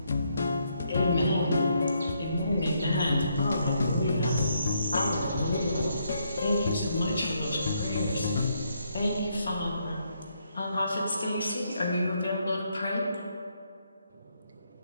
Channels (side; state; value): both; inverted; correlation -0.75